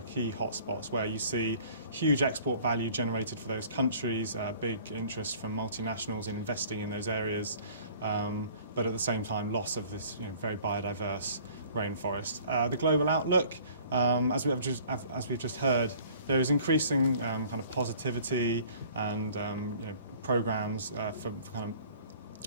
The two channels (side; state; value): both; inverted; correlation -0.52